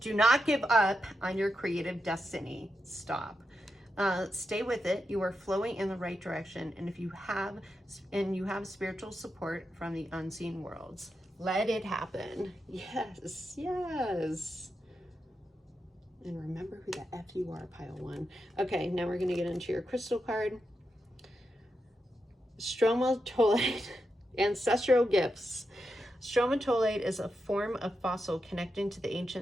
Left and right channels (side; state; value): both; normal; correlation 0.87